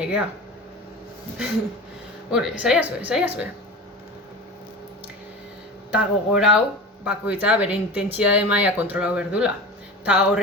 Saiazu. Ta gogorau, bakoitza bere intentsitate maila kontrolau berdula. Ta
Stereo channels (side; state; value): both; normal; correlation 0.31